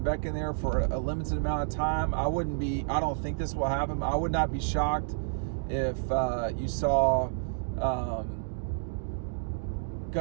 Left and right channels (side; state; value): left; silent; digital silence